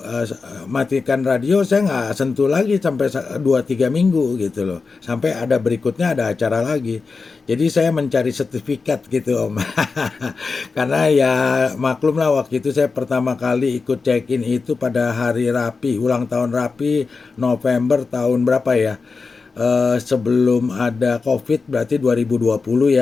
matikan radio, saya nggak sentuh lagi sampai 2-3 minggu gitu loh, sampai ada berikutnya ada acara lagi. Jadi saya mencari sertifikat gitu Om. Karena ya maklum lah waktu itu saya pertama kali ikut check in itu pada hari Rapi, ulang tahun Rapi November tahun berapa ya. Sebelum ada COVID berarti 2020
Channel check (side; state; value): right; quieter; 4.5 dB